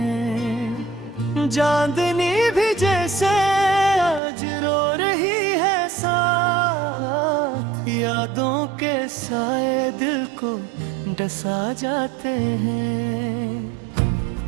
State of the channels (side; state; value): left; drops out; at 4.2 s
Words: चांदनी भी जैसे आज रो रही है साथ, यादों के साए दिल को डसा जाते हैं।